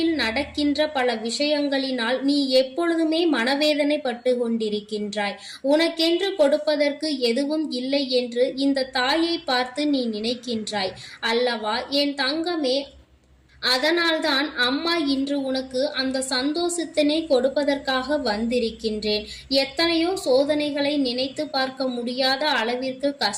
நடக்கின்ற பல விஷயங்களினால் நீ எப்பொழுதுமே மனவேதனை பட்டு கொண்டிருக்கின்றாய். உனக்கென்று கொடுப்பதற்கு எதுவும் இல்லை என்று இந்த தாயை பார்த்து நீ நினைக்கின்றாய் அல்லவா என் தங்கமே? அதனால்தான் அம்மா இன்று உனக்கு அந்த சந்தோஷத்தினை கொடுப்பதற்காக வந்திருக்கின்றேன். எத்தனையோ சோதனைகளை நினைத்து பார்க்க முடியாத அளவிற்கு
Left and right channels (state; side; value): identical; both; correlation 1.00